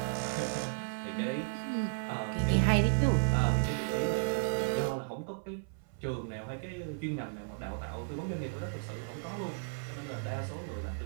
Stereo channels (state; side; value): silent; left; 55 dB below the other